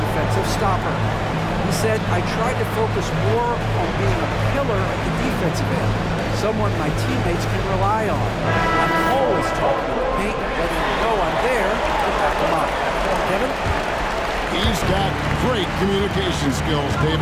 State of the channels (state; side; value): identical; both; correlation 1.00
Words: stopper. He said, I tried to focus more on being a pillar at the defensive end, someone my teammates can rely on. I'm always talking to the paint, letting them know I'm there to back them up. Kevin? He's got great communication skills,